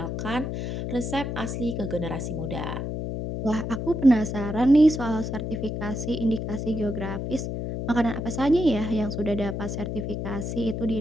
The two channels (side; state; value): left; noise; hum, 4 dB below the sound